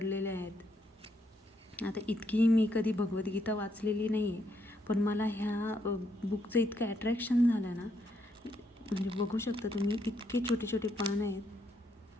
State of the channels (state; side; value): normal; both; correlation 0.75